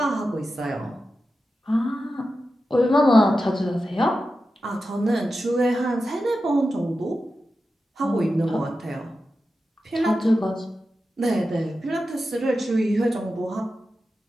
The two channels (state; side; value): normal; both; correlation 0.92